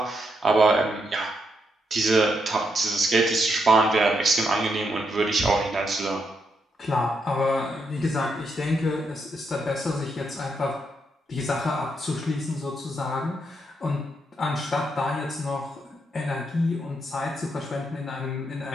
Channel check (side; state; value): both; normal; correlation 0.79